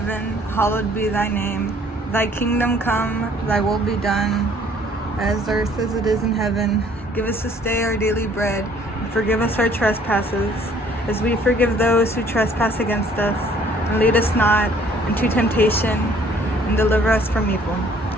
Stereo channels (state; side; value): normal; both; correlation 0.58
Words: hallowed be thy name. Thy kingdom come, thy will be done, as earth as it is in heaven. Give us this day our daily bread, and forgive us our trespasses, as we forgive those who trespass against us. And lead us not into temptation, and deliver us from evil.